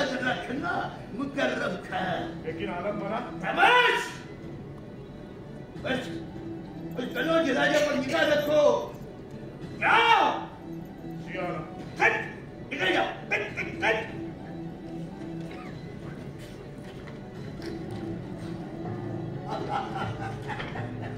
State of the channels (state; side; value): identical; both; correlation 1.00